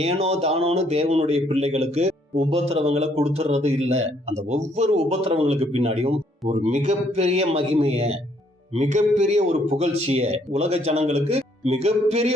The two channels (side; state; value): both; normal; correlation 0.67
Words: ஏனோ தானோன்னு தேவனுடைய பிள்ளைகளுக்கு உபத்திரவங்களை கொடுத்துறது இல்ல. அந்த ஒவ்வொரு உபத்திரவங்களுக்கு பின்னாடியும் ஒரு மிகப்பெரிய மகிமைய, மிகப்பெரிய ஒரு புகழ்ச்சிய, உலக ஜனங்களுக்கு மிகப்பெரிய